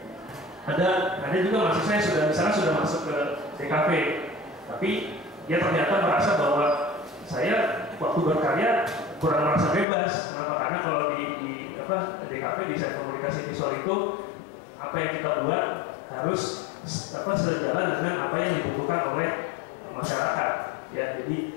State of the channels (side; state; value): right; drops out; at 9.9 s